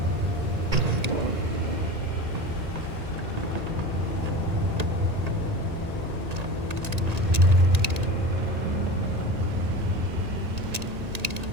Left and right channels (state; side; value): late; left; 1.9 ms